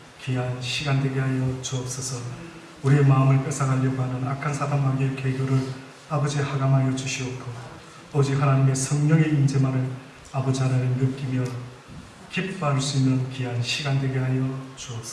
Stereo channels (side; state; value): both; identical; correlation 1.00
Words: 귀한 시간 되게 하여 주옵소서. 우리의 마음을 뺏어가려고 하는 악한 사단마귀의 계교를 아버지 하감하여 주시옵고 오직 하나님의 성령의 임재만을 아버지 하나님 느끼며 기뻐할 수 있는 귀한 시간 되게 하여